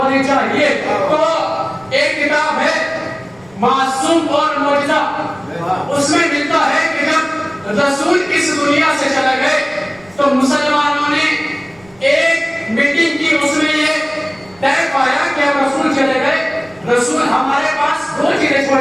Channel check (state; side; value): noise; right; rumble, 28 dB below the sound